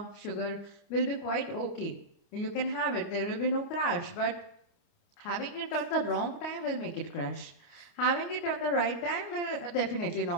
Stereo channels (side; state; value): right; late; 29 ms